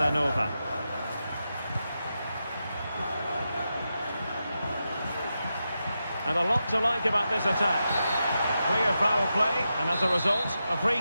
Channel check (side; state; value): both; inverted; correlation -0.88